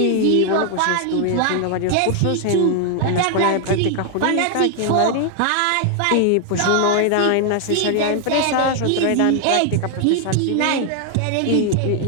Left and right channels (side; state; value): both; different; correlation 0.00